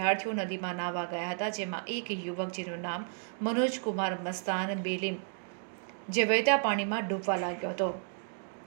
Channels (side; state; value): left; silent; 56 dB below the other